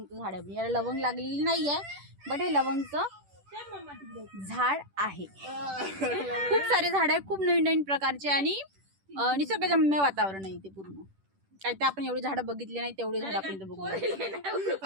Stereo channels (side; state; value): left; late; 10 ms